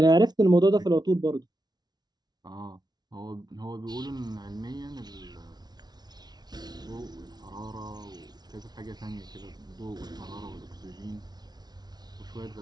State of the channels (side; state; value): left; late; 0.19 ms